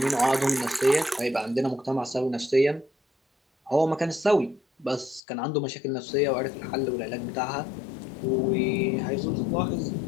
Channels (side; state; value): right; drops out; at 5.2 s